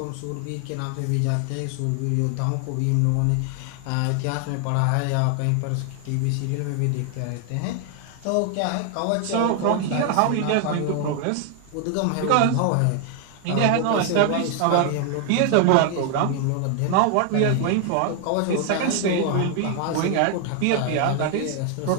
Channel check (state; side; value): different; both; correlation 0.00